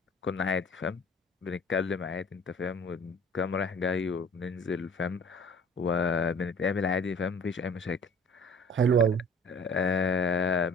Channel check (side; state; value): both; normal; correlation 0.48